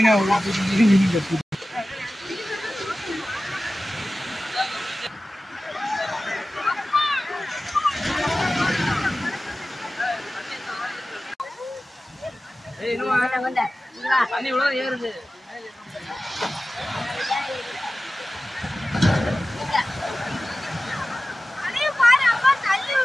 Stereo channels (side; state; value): both; normal; correlation 0.96